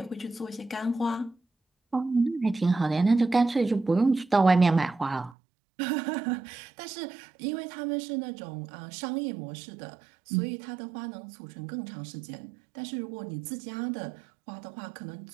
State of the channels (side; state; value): left; drops out; at 5.4 s